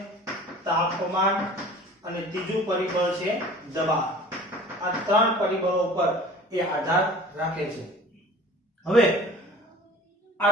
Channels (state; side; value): normal; both; correlation 0.44